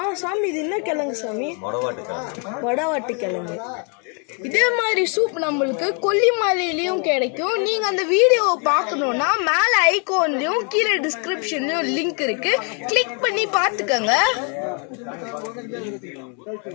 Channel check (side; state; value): right; quieter; 38.3 dB